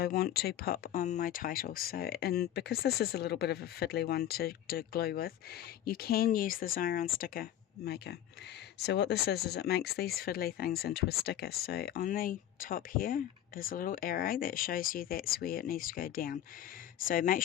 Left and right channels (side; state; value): right; quieter; 11.6 dB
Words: want to pop on my title. So, and because this is a little bit of a fiddly one to glue with, you can use the Xyron sticker maker. So what this is it makes these fiddly things into a sticker. So on the top here is a little arrow that shows you that's where it needs to go down. So make